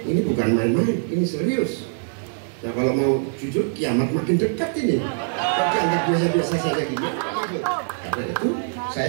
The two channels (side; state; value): left; silent; digital silence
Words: Ini bukan main-main, ini serius. Nah, kalau mau jujur, kiamat makin dekat ini. Tapi anggap biasa-biasa saja gini. Karena itu,